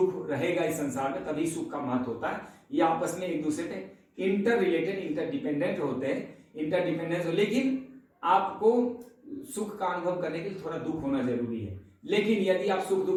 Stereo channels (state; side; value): identical; both; correlation 1.00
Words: रहेगा इस संसार में, तभी सुख का महत्व होता है। ये आपस में एक दूसरे पे इंटर रिलेटेड, इंटरडिपेंडेंट होते हैं, इंटरडिपेंडेंस हो। लेकिन आपको सुख का अनुभव करने के लिए थोड़ा दुख होना जरूरी है। लेकिन यदि आप सुख